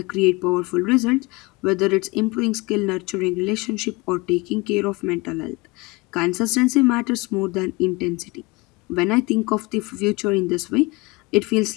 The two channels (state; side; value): quieter; right; 24.7 dB